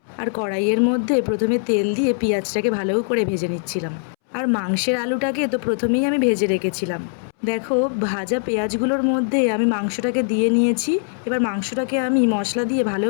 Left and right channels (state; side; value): silent; right; 65 dB below the other